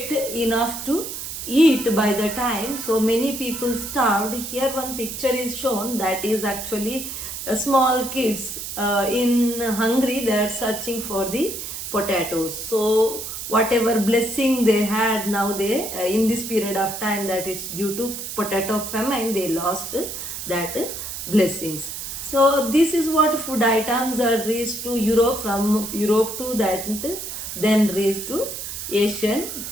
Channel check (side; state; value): right; noise; hiss, 7 dB below the sound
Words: enough to eat by the time. So many people starved. Here one picture is shown, that is actually small kids in Hungary. They are searching for the potatoes. So whatever blessing they had, now they in this period of time, that it's due to potato famine, they lost that blessings. So this is what food items are reached to Europe, from Europe to that, then reached to Asian